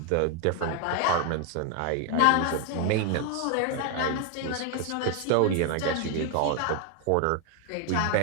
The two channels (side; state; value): both; different; correlation 0.00